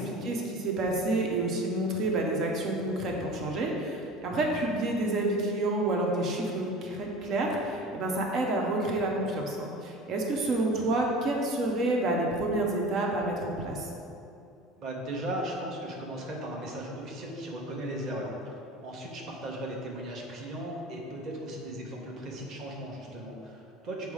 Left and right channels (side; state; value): both; normal; correlation 0.37